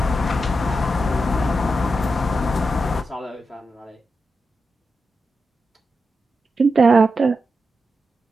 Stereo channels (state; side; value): normal; both; correlation 0.88